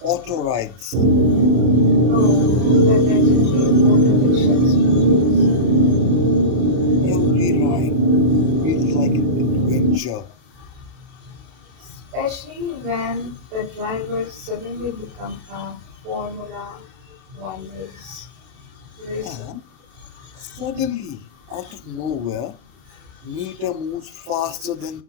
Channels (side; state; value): left; late; 32 ms